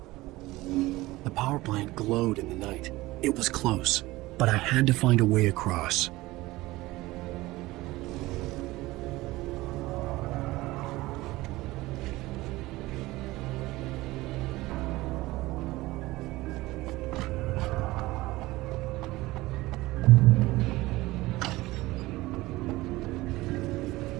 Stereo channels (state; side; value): quieter; left; 19.2 dB